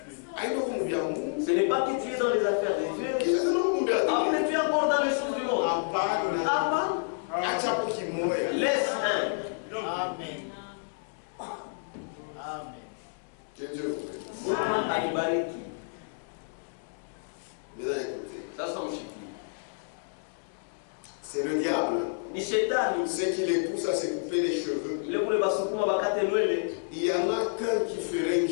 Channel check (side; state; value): right; silent; digital silence